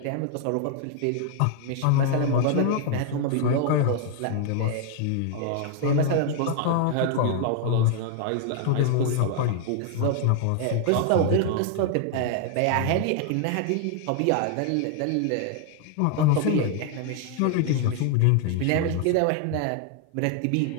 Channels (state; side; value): different; both; correlation 0.00